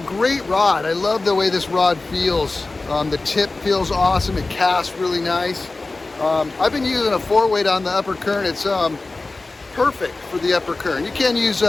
great rod. I love the way this rod feels. The tip feels awesome. It casts really nice. I've been using a 4-weight on the Upper Kern. It's perfect for the Upper Kern. You can use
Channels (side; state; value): right; quieter; 3.3 dB